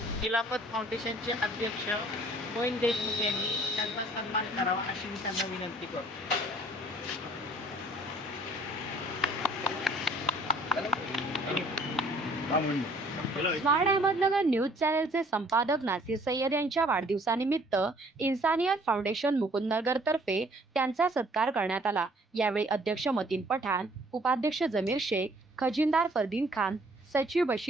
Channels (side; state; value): both; normal; correlation 0.57